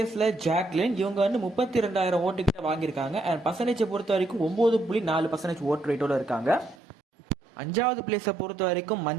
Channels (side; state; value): left; drops out; at 6.8 s